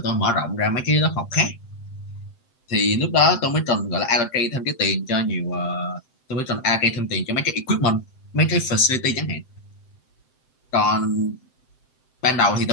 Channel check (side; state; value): right; late; 7.7 ms